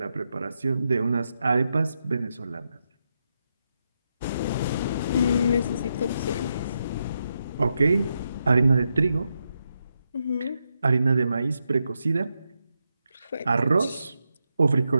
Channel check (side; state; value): both; inverted; correlation -0.84